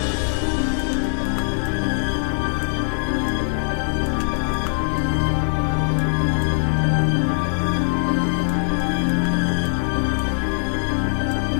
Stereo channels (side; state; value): right; silent; digital silence